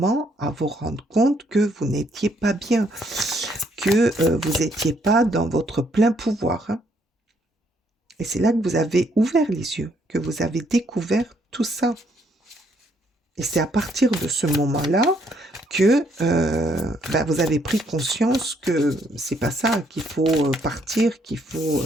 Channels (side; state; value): both; normal; correlation 0.70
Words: à vous rendre compte que vous n'étiez pas bien, que vous n'étiez pas dans votre plein pouvoir, hein. Et c'est là que vous avez ouvert les yeux, que vous avez découvert tout ça. Et c'est à partir de ce moment-là que vous avez pris conscience que c'est pas ça, qu'il faut partir, qu'il faut